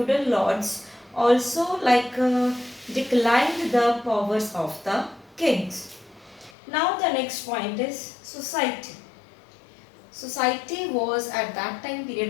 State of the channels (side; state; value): right; drops out; at 6.5 s